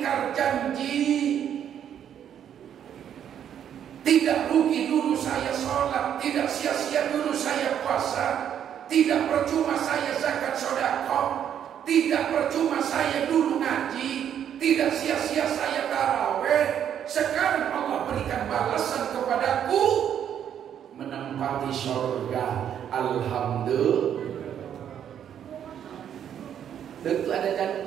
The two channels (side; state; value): left; quieter; 9.4 dB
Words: janji. Tidak rugi dulu saya sholat, tidak sia-sia dulu saya puasa, tidak percuma saya zakat sedekah, tidak percuma saya dulu ngaji, tidak sia-sia saya tarawih. Sekarang Allah berikan balasan kepadaku, menempati surga. Alhamdulillah. Tentu ada